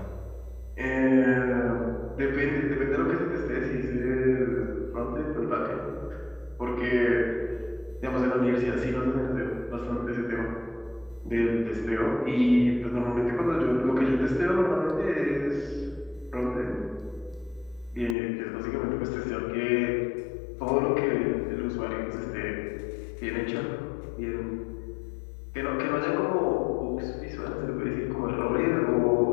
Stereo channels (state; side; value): drops out; right; at 18.2 s